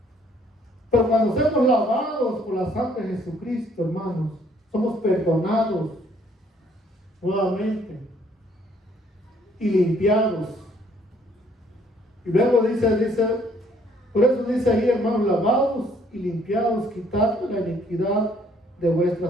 Pero cuando somos lavados por la sangre de Jesucristo, hermanos, somos perdonados nuevamente y limpiados. Y luego dice, por eso dice ahí, hermanos, lavados y limpiados, quitad la iniquidad de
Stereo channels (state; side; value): normal; both; correlation 0.64